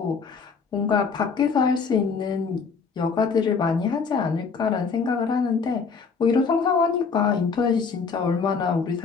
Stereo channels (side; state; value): right; quieter; 5.3 dB